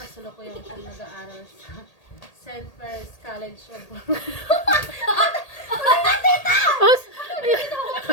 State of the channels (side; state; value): right; late; 1.8 ms